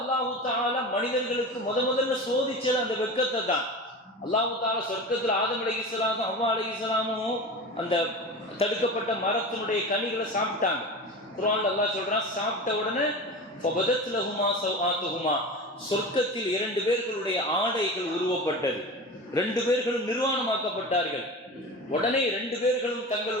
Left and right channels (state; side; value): normal; both; correlation 0.31